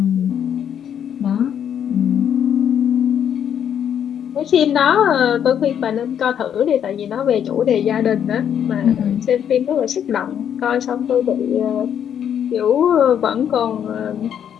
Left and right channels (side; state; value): right; quieter; 9.0 dB